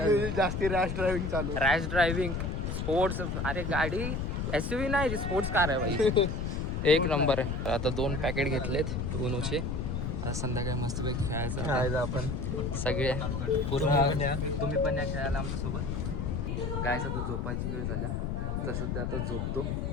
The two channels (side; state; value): left; noise; rumble, 2 dB below the sound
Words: Off-roading जास्ती रॅश ड्रायव्हिंग चालू. Rash driving, sports. अरे गाडी SUV नाही, स्पोर्ट्स कार आहे भाई. एक नंबर आहे. आता 2 पॅकेट घेतलेत उनोचे. आता संध्याकाळी मस्तपैकी खेळायचं आता. आपण सगळे पूर्ण. तुम्ही पण या खेळायला आमच्यासोबत. गायचा तो झोपायची वेळ झाल्या, तर सध्या आता झोपतो.